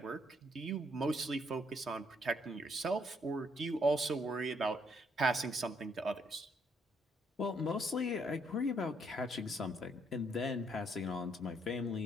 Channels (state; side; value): normal; both; correlation 0.71